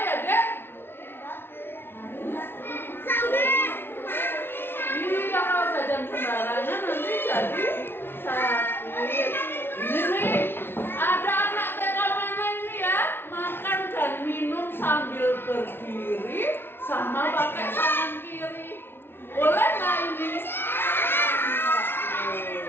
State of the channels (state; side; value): late; right; 0.11 ms